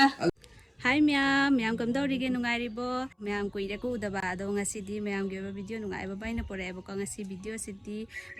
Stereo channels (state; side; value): identical; both; correlation 1.00